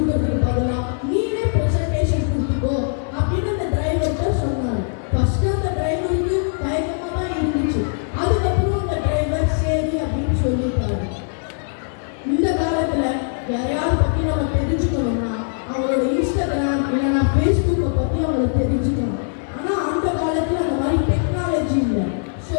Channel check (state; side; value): silent; right; digital silence